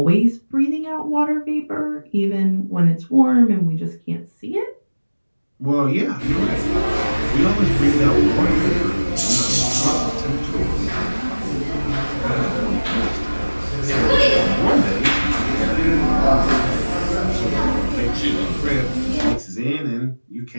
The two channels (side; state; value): both; inverted; correlation -1.00